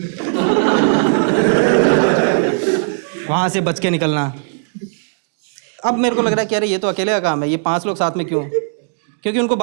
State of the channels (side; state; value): left; silent; digital silence